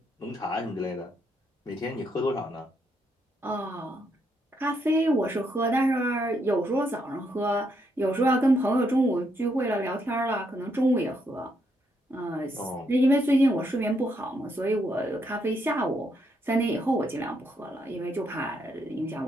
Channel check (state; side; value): normal; both; correlation 0.76